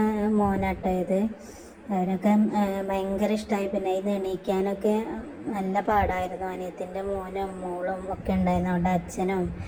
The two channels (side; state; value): both; identical; correlation 1.00